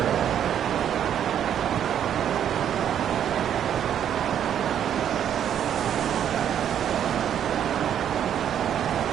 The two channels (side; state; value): left; quieter; 9.5 dB